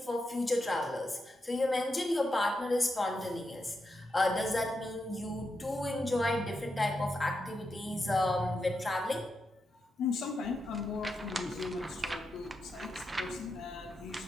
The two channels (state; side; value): normal; both; correlation 0.86